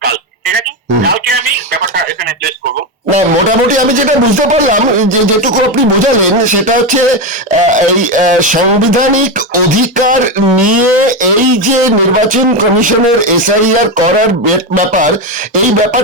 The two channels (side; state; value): both; normal; correlation 0.12